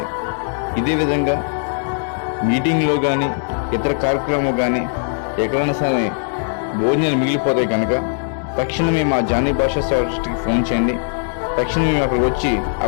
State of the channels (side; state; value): right; silent; digital silence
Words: ఇదే విధంగా మీటింగ్లో కానీ ఇతర కార్యక్రమం కానీ ఎక్కడైనా సరే భోజనాలు మిగిలిపోతాయి కనుక తక్షణమే మా జానీ భాషా సేవ ట్రస్ట్కి ఫోన్ చేయండి. తక్షణమే మేము అక్కడికి వచ్చి